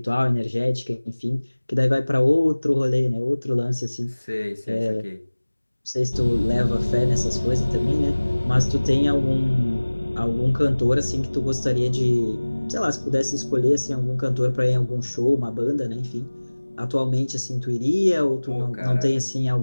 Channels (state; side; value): inverted; both; correlation -1.00